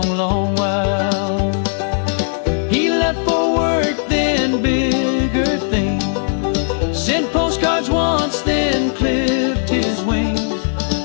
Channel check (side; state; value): right; silent; 67 dB below the other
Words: long while. He left for work, then bigger things. Sent postcards once, then clipped his wings.